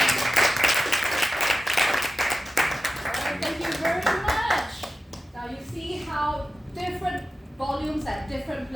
thank you very much. Now you see how different volumes at different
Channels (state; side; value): normal; both; correlation 0.93